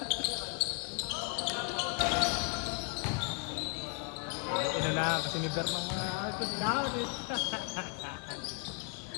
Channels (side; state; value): right; quieter; 35.9 dB